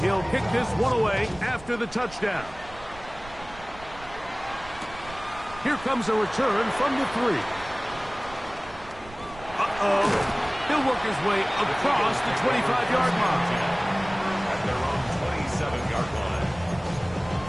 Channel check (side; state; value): right; noise; rumble, 18 dB below the sound